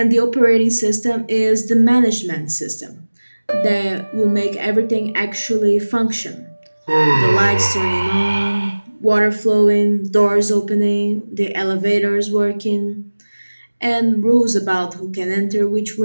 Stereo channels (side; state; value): both; inverted; correlation -1.00